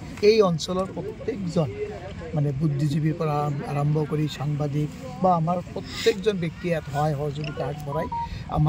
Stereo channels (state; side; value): identical; both; correlation 1.00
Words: এই অঞ্চলৰ প্ৰত্যেকজন মানে বুদ্ধিজীৱীৰ পৰা আৰম্ভ কৰি সাংবাদিক বা আমাৰ প্ৰত্যেকজন ব্যক্তিয়ে ইয়াত সহায় সহযোগিতা আগবঢ়াই